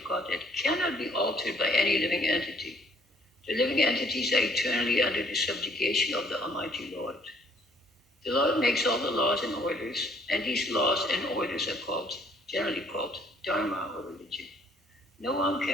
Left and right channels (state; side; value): normal; both; correlation 0.62